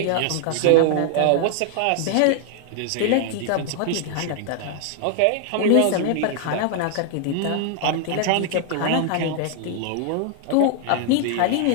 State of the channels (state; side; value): different; both; correlation 0.00